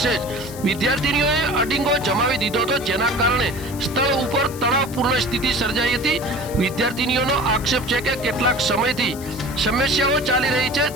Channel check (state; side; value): noise; left; hiss, 15 dB below the sound